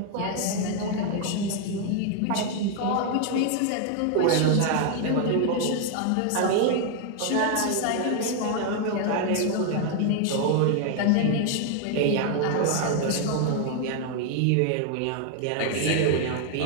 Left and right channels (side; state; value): both; different; correlation 0.00